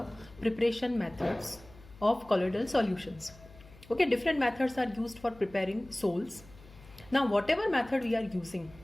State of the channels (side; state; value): left; noise; hum, 22 dB below the sound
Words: preparation methods of colloidal solutions. Okay, different methods are used for preparing sols. Now, whatever method we are using,